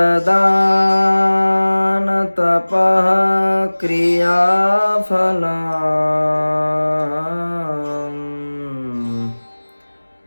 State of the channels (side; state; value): both; inverted; correlation -1.00